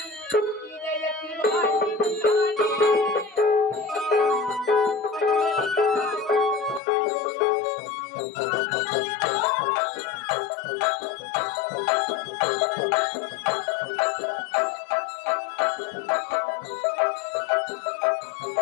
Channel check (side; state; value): right; drops out; at 6.8 s